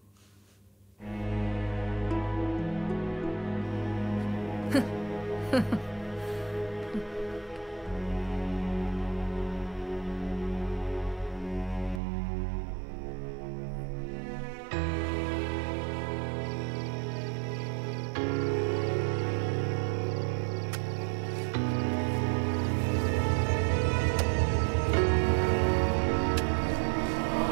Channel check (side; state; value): left; drops out; at 12.0 s